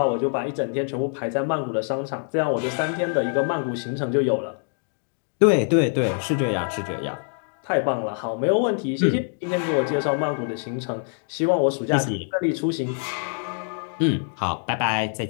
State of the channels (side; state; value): right; silent; 58 dB below the other